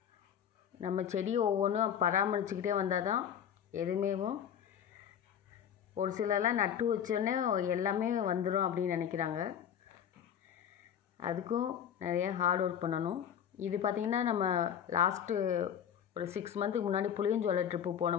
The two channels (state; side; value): quieter; right; 8.9 dB